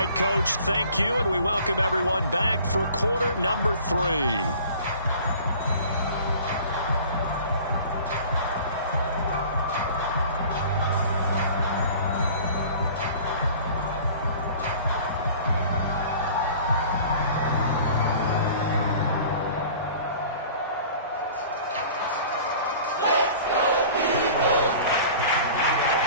Coach, thank you, and we welcome everyone back for quarter number 3.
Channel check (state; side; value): inverted; both; correlation -0.46